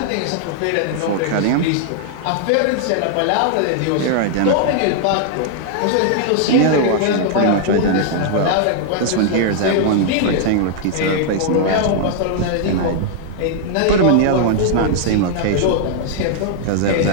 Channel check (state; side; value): different; both; correlation -0.01